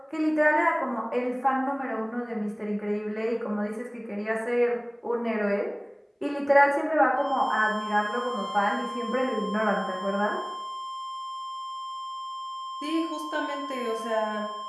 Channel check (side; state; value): both; identical; correlation 1.00